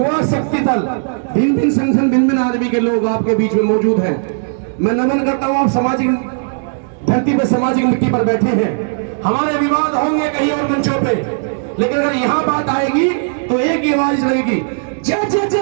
शक्ति दल, भिन्न भिन्न संगठन, भिन्न भिन्न आदमी के लोग आपके बीच में मौजूद हैं। मैं नमन करता हूं, आप सामाजिक धरती पर, सामाजिक मिट्टी पर बैठे हैं। हमारे विवाद होंगे कहीं और मंचों पे, लेकिन अगर यहां बात आएगी तो एक ही आवाज लगेगी, जय जय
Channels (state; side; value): silent; left; digital silence